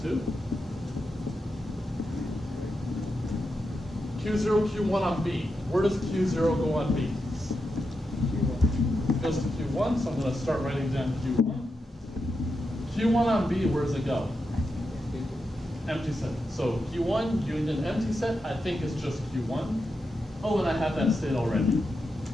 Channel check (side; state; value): both; normal; correlation 0.87